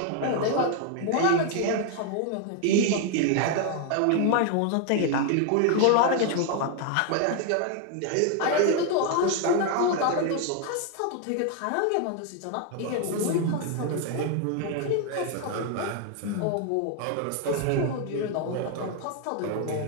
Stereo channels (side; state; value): both; different; correlation 0.00